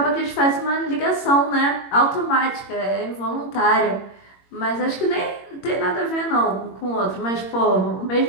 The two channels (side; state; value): right; late; 21 ms